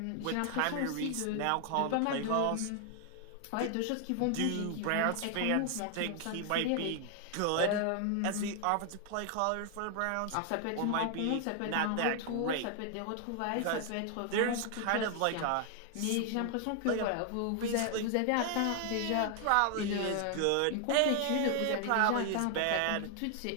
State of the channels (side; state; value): both; different; correlation 0.00